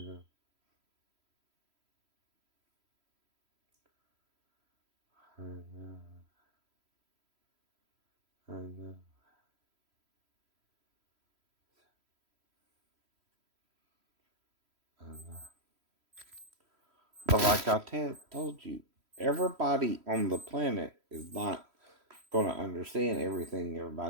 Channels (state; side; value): late; left; 3.1 ms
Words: I know. I know. But like I told you, everybody on the planet is not going to understand everything